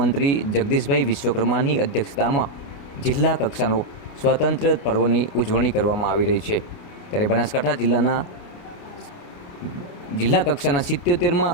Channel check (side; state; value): right; late; 29 ms